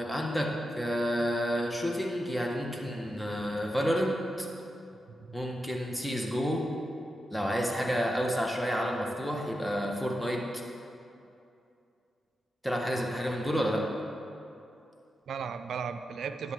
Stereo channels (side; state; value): both; normal; correlation 0.88